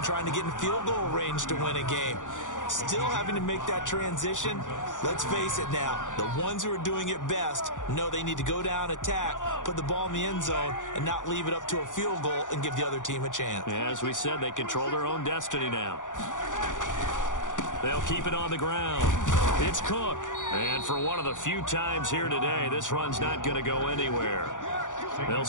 trying to get in field goal range to win a game. Still having to make that transition. Let's face it now, the ones who are doing it best know they need to go down, attack, put the ball in the end zone, and not leave it up to a field goal and give the other team a chance. Yeah, as we said, they control their own destiny now. They'll keep it on the ground. It's Cook. And for one of the few times here today, this run's not going to go anywhere. They'll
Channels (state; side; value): late; right; 0.87 ms